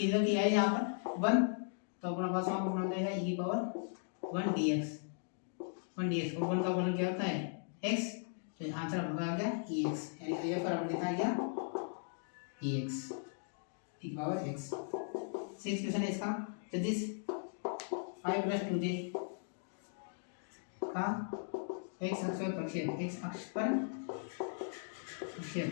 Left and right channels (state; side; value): silent; right; digital silence